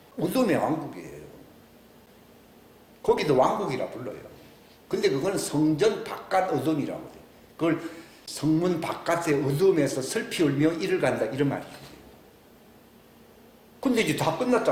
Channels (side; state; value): both; identical; correlation 1.00